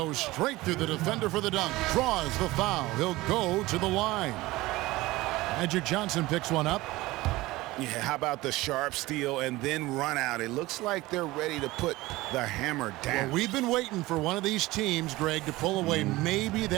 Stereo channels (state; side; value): quieter; left; 19.3 dB